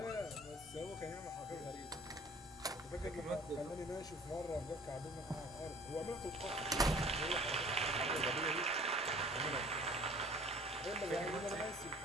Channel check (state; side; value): normal; both; correlation 0.50